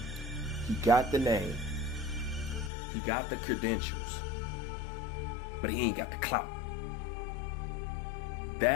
he got the name, he got the credentials, but he ain't got the clout.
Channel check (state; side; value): drops out; right; at 2.7 s